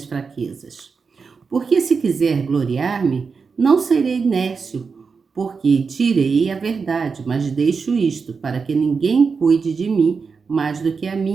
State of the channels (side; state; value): left; quieter; 5.2 dB